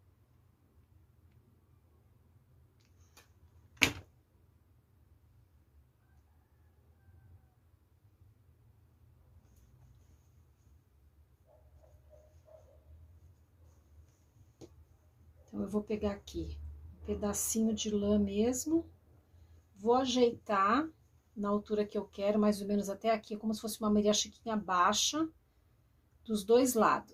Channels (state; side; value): identical; both; correlation 1.00